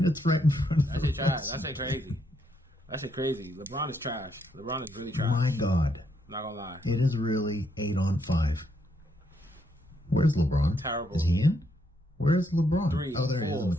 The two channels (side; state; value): both; normal; correlation 0.75